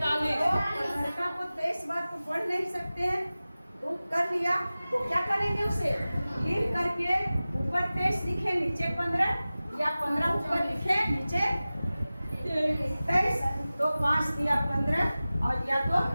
को 23 बार तो पढ़ नहीं सकते हैं, तो कर लिया। तो क्या करेंगे? उसे लिख करके ऊपर 23 लिखे, नीचे 15, या 15 ऊपर लिखे नीचे 23, तो 5 दिया 15 और या तो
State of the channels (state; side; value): inverted; both; correlation -0.97